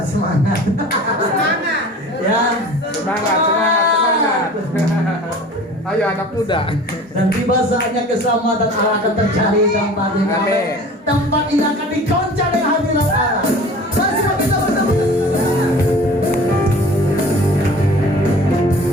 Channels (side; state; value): both; normal; correlation 0.42